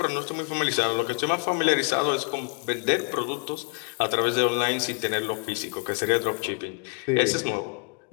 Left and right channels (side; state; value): right; quieter; 36.0 dB